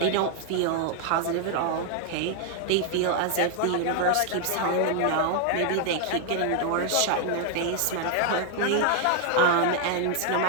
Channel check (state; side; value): different; both; correlation 0.00